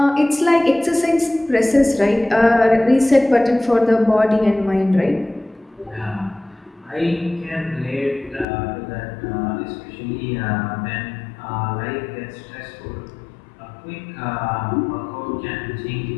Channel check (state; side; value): drops out; right; at 8.5 s